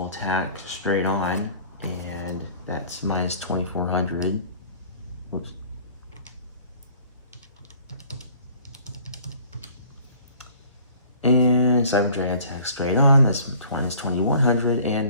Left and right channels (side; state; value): both; inverted; correlation -0.52